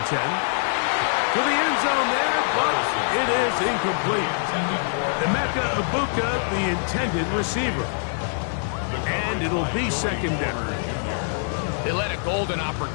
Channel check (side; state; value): right; silent; digital silence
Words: 10. To the end zone there, but it is incomplete. Emeka Ibuka, the intended receiver. And it'll be 2nd down. They let a golden